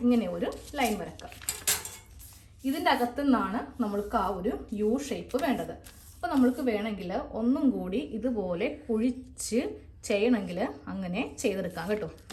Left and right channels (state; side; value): identical; both; correlation 1.00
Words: ഇങ്ങനെ ഒരു ലൈൻ വരക്കാം. ഇതിൻ്റെ അകത്തു നിന്നാണ് നമ്മൾക്ക് ആ ഒരു യു ഷേപ്പ് വേണ്ടത്. അപ്പോൾ നമ്മൾക്ക് വേണമെങ്കിൽ ഒന്നും കൂടി ഇതുപോലെ കുഴിച്ച് ചെയ്യണമെങ്കിൽ അങ്ങനെ ചെയ്തെടുക്കാം കേട്ടോ.